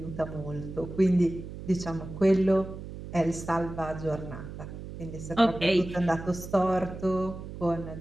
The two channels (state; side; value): noise; right; hum, 11 dB below the sound